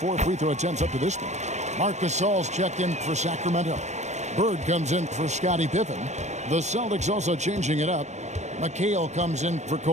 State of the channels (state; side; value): late; left; 0.34 ms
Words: free throw attempts up to this point. Marc Gasol's checked in for Sacramento. Bird comes in for Scottie Pippen. The Celtics also changing it up. McHale comes in for